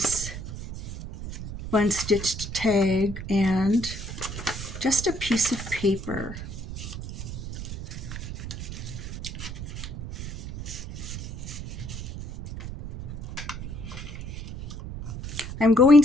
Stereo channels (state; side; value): noise; right; rumble, 8 dB below the sound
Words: fun stitched tag, and just a piece of paper. I'm going